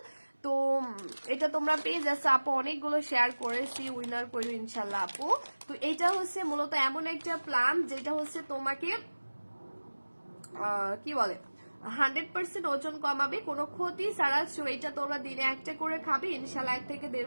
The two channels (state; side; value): inverted; both; correlation -1.00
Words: তো এটা তোমরা পেয়ে যাচ্ছ, আপু অনেকগুলো শেয়ার করেছি, উইনার করো ইনশাল্লাহ আপু। তো এটা হচ্ছে মূলত এমন একটা প্ল্যান যেটা হচ্ছে তোমাকে কি বলে 100% ওজন কমাবে, কোনো ক্ষতি ছাড়া। এটা তোমরা দিনে একটা করে খাবে, ইনশাল্লাহ 1 থেকে 1.5